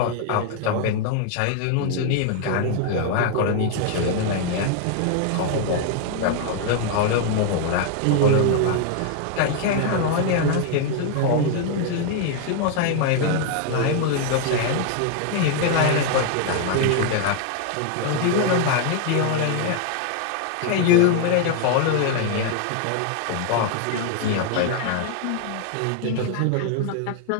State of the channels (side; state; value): both; different; correlation 0.00